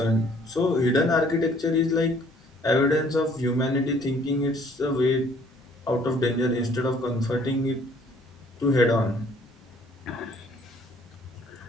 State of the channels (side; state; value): both; normal; correlation 0.59